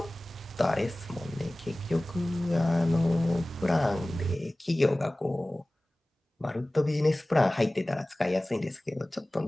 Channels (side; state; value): both; normal; correlation 0.98